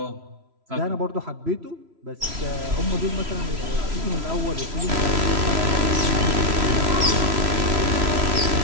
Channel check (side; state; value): left; late; 3.0 ms